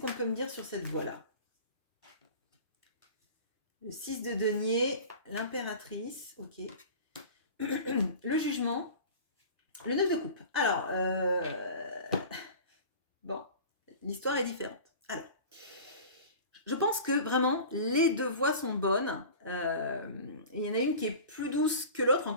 peut me dire sur cette voix-là? Le 6 de denier, l'impératrice, ok. Le jugement, le 9 de coupe. Alors, bon, l'histoire est différente. Alors, je pense que vraiment, les 2 voix sont bonnes. Il y en a une qui est plus douce que l'autre,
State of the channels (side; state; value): both; inverted; correlation -0.38